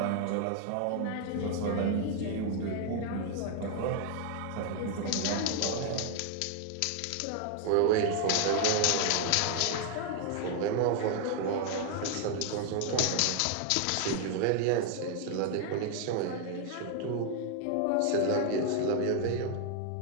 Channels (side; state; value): both; different; correlation 0.00